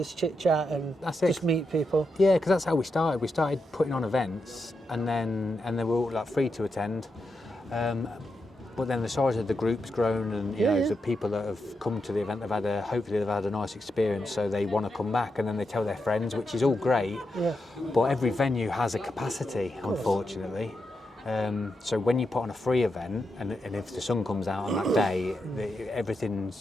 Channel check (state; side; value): normal; both; correlation 0.85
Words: chit chat and just meet people. Yeah, because that's how we started. We started putting on events, and they were all like free to attend. But then the size of the group's grown, and the people that have come to the event, hopefully they've had a nice experience, so they want to come back, and then they tell their friends, which is all great. Yeah. But every venue has a capacity, unfortunately. So when you put on a free event, and if the sun comes out on that day,